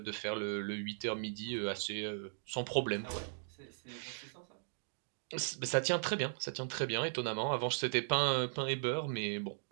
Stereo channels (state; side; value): silent; left; digital silence